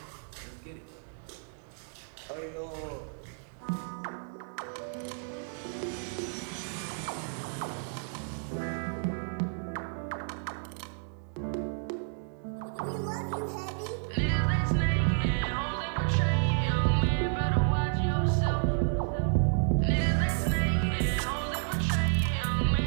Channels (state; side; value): silent; left; 57 dB below the other